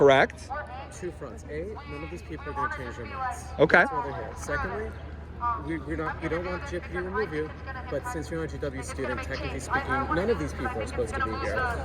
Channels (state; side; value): identical; both; correlation 1.00